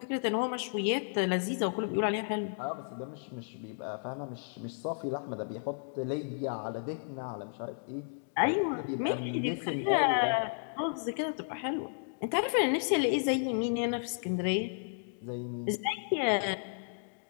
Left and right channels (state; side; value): silent; right; digital silence